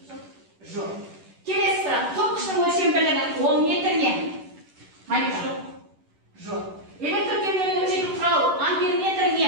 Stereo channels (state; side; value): late; left; 11 ms